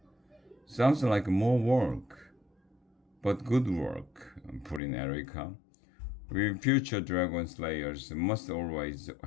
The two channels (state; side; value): drops out; right; at 4.8 s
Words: "Sounds like more work." "But good work," put in Erica. "We future dragon slayers must always